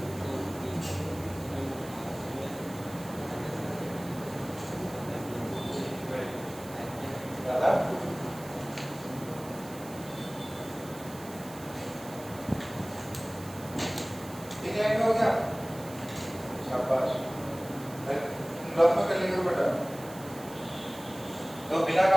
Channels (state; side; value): noise; right; hiss, 17 dB below the sound